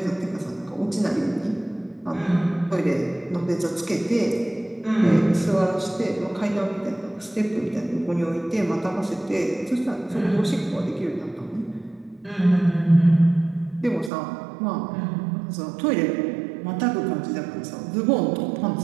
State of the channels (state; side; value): drops out; left; at 14.1 s